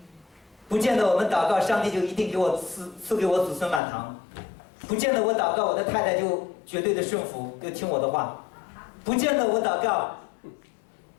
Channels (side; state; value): right; drops out; at 3.8 s